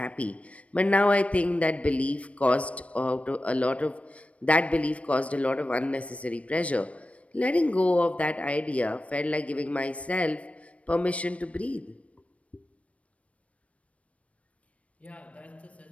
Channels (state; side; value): late; right; 0.064 ms